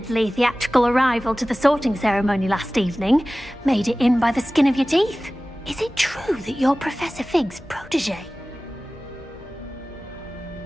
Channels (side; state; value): both; normal; correlation 0.97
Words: theatrical arrival to the sorting ceremony last evening. Made it in by the skin of your teeth. Is it true that you're Professor Fig's protege?